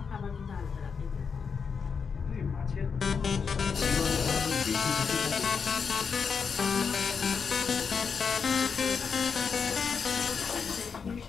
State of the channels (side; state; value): right; quieter; 5.9 dB